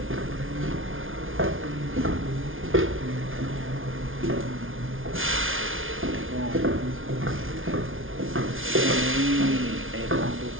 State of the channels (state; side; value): late; left; 0.58 ms